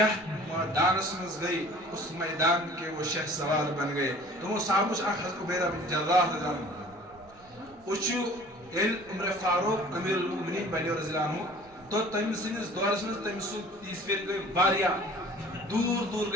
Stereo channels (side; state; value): both; normal; correlation 0.48